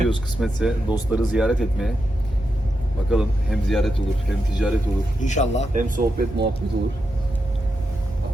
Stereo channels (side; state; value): both; normal; correlation 0.86